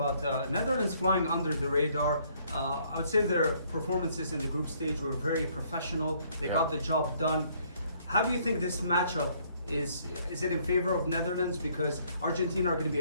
Netherlands flying under the radar. I would say their performances in the group stage were very professional. They got the job done. How do you think this matchup is it in favor of Netherlands? Because Argentina are going to be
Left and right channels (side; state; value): both; inverted; correlation -0.65